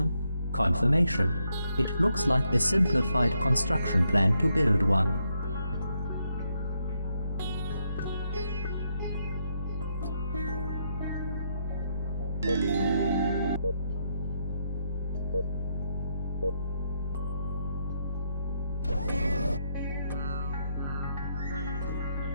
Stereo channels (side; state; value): both; inverted; correlation -0.78